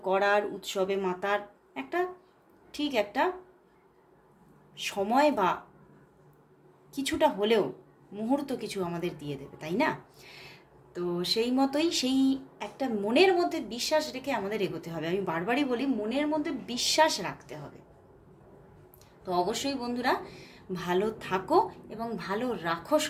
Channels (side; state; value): both; identical; correlation 1.00